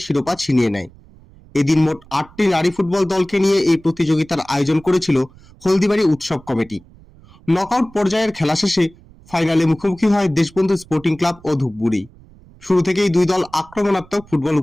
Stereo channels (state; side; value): noise; right; rumble, 25 dB below the sound